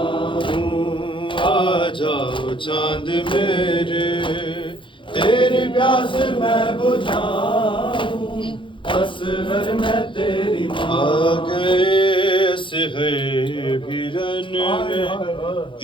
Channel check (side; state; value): right; late; 0.24 ms